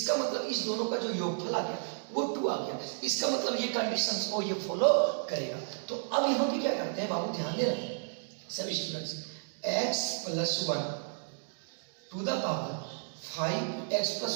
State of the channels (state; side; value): silent; left; digital silence